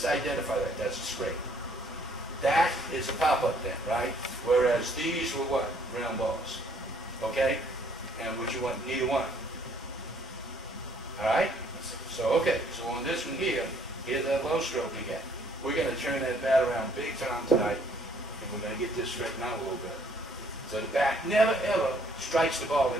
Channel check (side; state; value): both; normal; correlation 0.63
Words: identify that. That's a scrape. That is a pop-up then, right? Whereas these were what? Round balls. Okay? And what you want? Neither one. Alright? So on this one here, here's that low stroke again. We're going to turn that bat around big time tonight, and we're going to get this straightened out a little bit. So the bat never ever strikes the ball